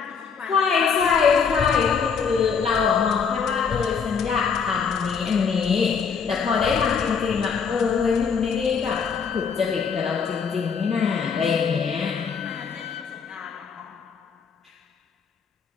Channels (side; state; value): right; quieter; 6.0 dB